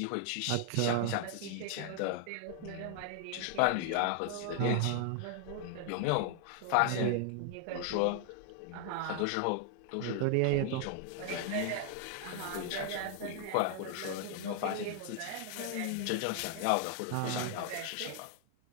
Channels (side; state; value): both; different; correlation 0.00